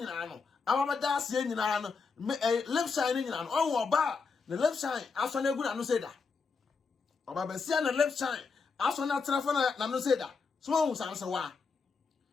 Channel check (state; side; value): quieter; right; 4.9 dB